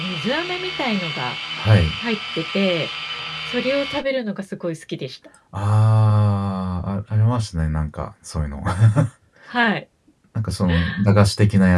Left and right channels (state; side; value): identical; both; correlation 1.00